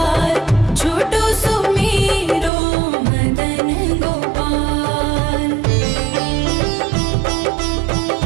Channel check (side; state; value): left; drops out; at 2.5 s